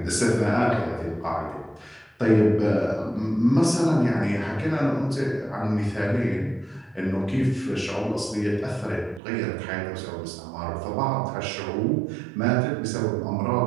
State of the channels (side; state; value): left; drops out; at 9.2 s